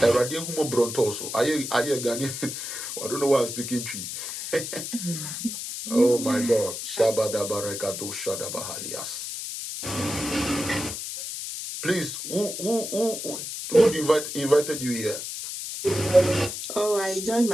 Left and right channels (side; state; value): left; noise; hiss, 6 dB below the sound